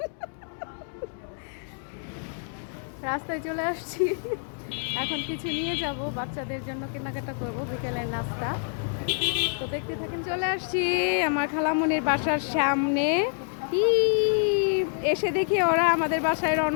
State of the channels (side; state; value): right; silent; digital silence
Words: রাস্তায় চলে আসছি, এখন কিছু নিয়ে যাব, বাচ্চাদের জন্য কেনাকাটা করব, বিকেলের নাস্তা। তো দেখতে থাকেন। চলে আসছি আমার খালামণির বাসার সামনে। এসে দেখি ওরা আমাদের বাসায়